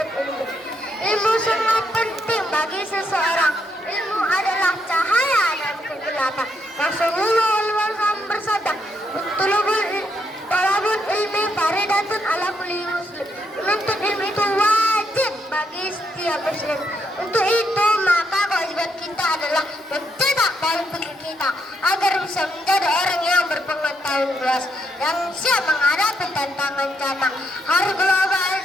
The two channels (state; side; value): normal; both; correlation 0.77